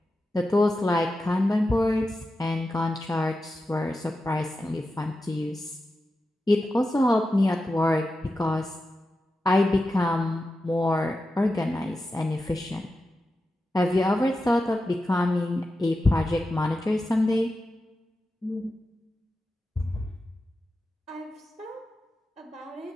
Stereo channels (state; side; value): normal; both; correlation 0.91